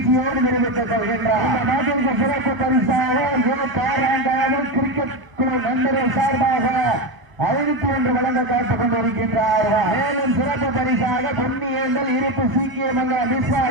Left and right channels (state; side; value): late; left; 1.1 ms